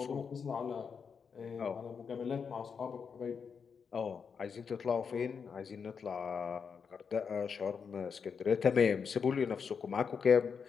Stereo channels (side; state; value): right; quieter; 6.2 dB